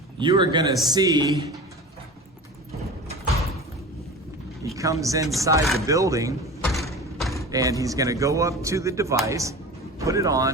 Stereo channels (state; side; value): normal; both; correlation 0.34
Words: you are gonna see he comes inside the building and he's gonna go up to the device, put it